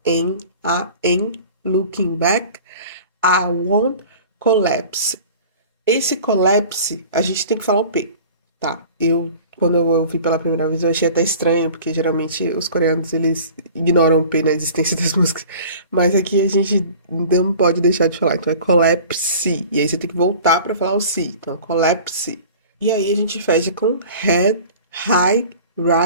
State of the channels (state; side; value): inverted; both; correlation -0.43